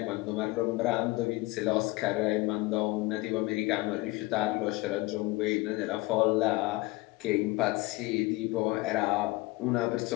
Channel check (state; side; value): quieter; right; 21.5 dB